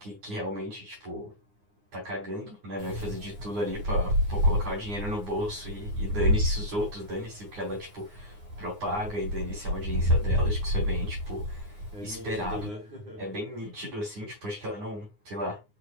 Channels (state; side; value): late; left; 9.7 ms